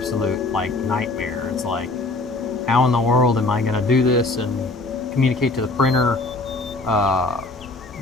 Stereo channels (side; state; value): right; quieter; 3.2 dB